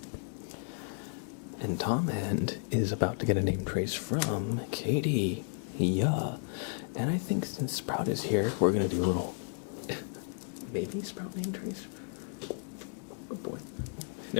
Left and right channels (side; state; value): right; silent; 56 dB below the other